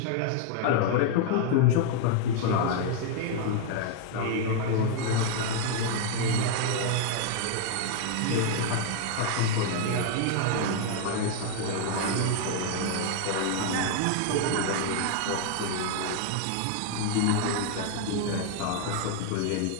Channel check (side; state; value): both; different; correlation 0.00